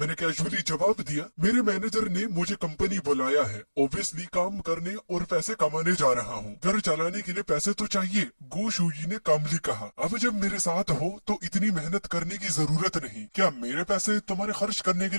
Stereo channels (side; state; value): both; inverted; correlation -1.00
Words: कैजुअली जवाब दिया, मेरे मैनेजर ने मुझे कंपनी बुलाया है, ऑब्वियसली काम करने और पैसे कमाने जा रहा हूँ। घर चलाने के लिए पैसे तो चाहिए, गो शूयी ने कामली कहा। अब जब मेरे साथ हो तो इतनी मेहनत करने की जरूरत नहीं। क्या मेरे पैसे तुम्हारे खर्च करने के